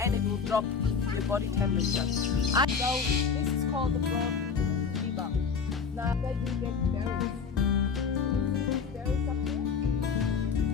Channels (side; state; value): right; quieter; 5.8 dB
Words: it will drop your body temperature. So this is called the broad fever. Now they do get berries. These berries up here,